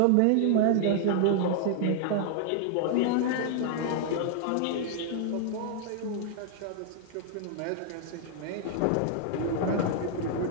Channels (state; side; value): different; both; correlation 0.00